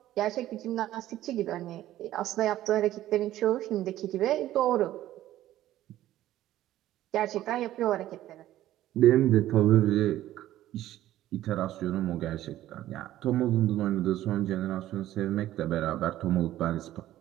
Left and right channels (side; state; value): left; quieter; 13.9 dB